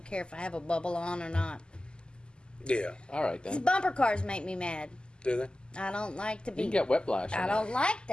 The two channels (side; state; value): right; late; 0.048 ms